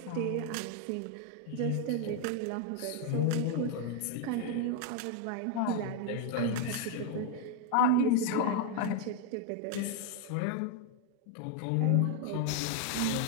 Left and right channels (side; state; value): both; different; correlation 0.01